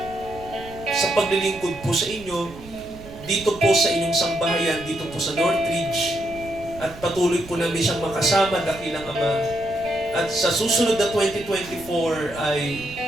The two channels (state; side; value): noise; right; rumble, 17 dB below the sound